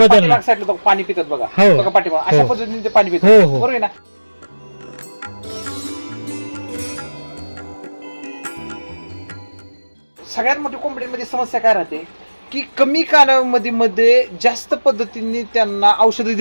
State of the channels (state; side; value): inverted; both; correlation -1.00